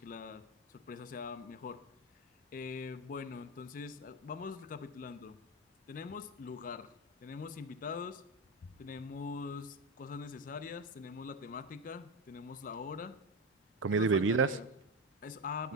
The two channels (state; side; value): normal; both; correlation 0.15